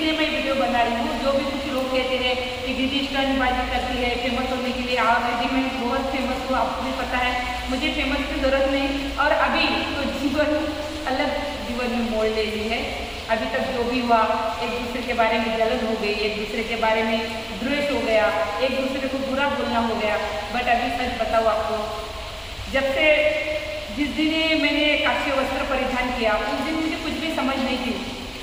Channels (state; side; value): identical; both; correlation 1.00